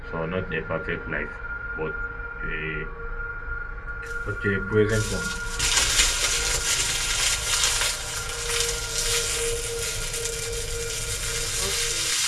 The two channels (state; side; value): identical; both; correlation 1.00